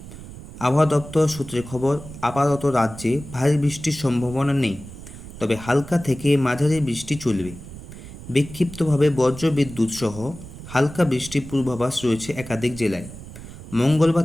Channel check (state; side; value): noise; right; rumble, 14 dB below the sound